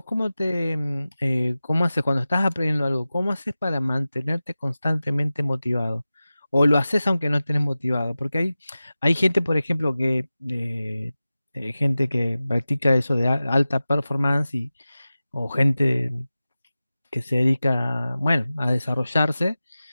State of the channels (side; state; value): both; inverted; correlation -0.95